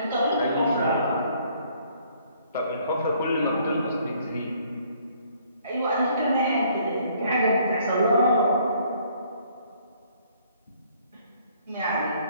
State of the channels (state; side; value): inverted; both; correlation -0.62